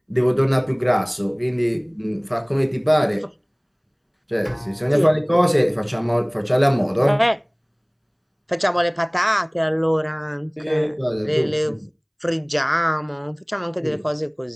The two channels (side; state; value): both; identical; correlation 1.00